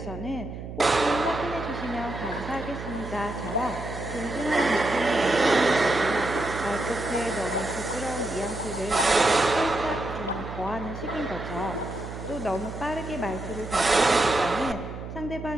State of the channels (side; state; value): right; noise; hum, 9 dB below the sound